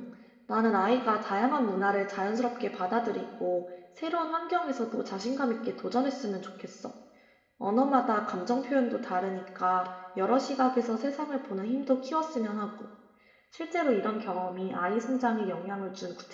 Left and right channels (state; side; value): identical; both; correlation 1.00